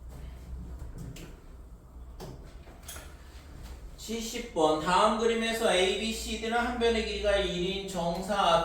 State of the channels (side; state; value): both; identical; correlation 1.00